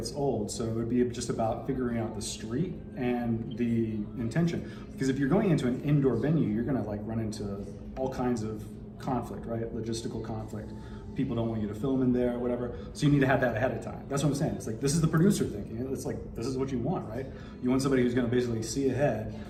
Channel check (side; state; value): both; identical; correlation 1.00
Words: old. So it would be just about figuring out the street and the intention. Because if you're going into an indoor venue, you're going to run into all kinds of conflict, right? Logistical conflict. People don't want you to film in there or whatever. So you need to have that ahead of time. That's what I'm saying. It's this is the producer thinking. It's this is what you want, right? You want somebody who's going to basically see ahead